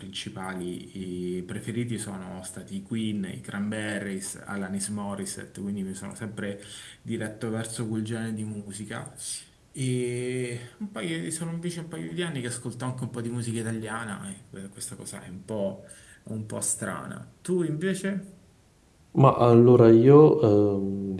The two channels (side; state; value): both; identical; correlation 1.00